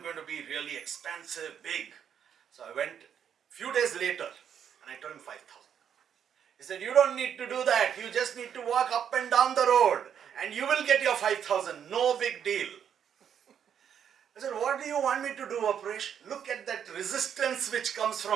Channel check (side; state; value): left; quieter; 8.5 dB